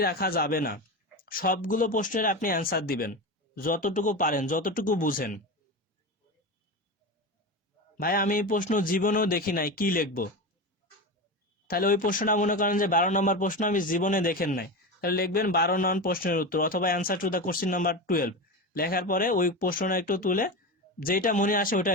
রাখা যাবে না, সবগুলো প্রশ্নের আপনি অ্যান্সার দিবেন, যতটুকু পারেন, যতটুকু বুঝেন। ভাই আমি এই প্রশ্ন জীবনেও দেখি নাই, কি লিখবো? তাহলে ওই প্রশ্নটা মনে করেন যে 12 নম্বর প্রশ্ন, আমি জীবনে দেখেন নাই, তাহলে লিখবেন 12 নং প্রশ্নের উত্তর, অথবা answer to the question number 12। লেখার পরে ওই প্রশ্নটা একটু তুলে যেটা মনে আসে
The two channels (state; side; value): normal; both; correlation 0.22